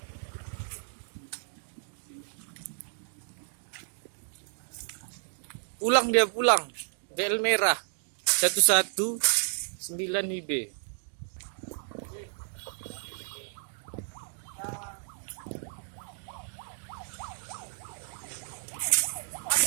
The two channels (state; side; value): silent; left; digital silence